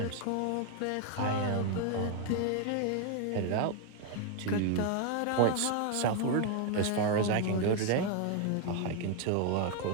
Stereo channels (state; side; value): different; both; correlation 0.01